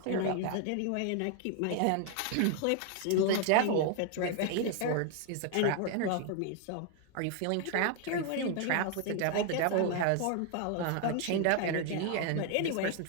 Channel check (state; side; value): different; both; correlation 0.00